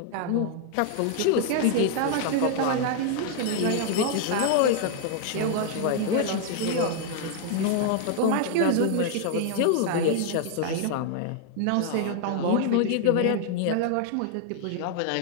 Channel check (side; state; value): both; different; correlation 0.00